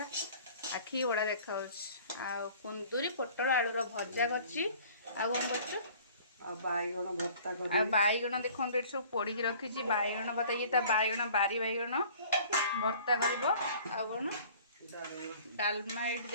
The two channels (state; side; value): inverted; both; correlation -0.50